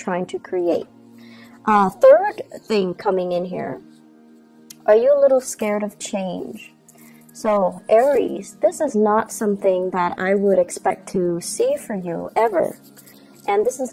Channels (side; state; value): both; identical; correlation 1.00